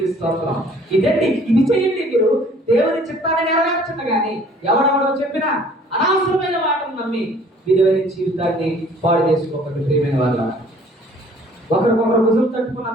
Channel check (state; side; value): normal; both; correlation 0.55